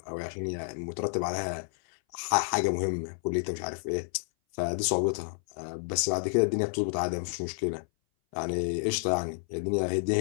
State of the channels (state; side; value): silent; right; 58 dB below the other